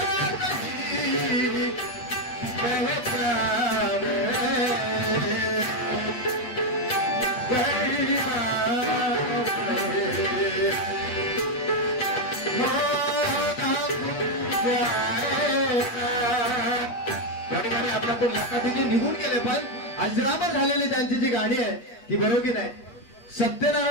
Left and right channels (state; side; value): late; right; 8.4 ms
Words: निघून गेले. पण अजरामर झालेली त्यांची जी गाणी आहे ती बरोबर की नाही.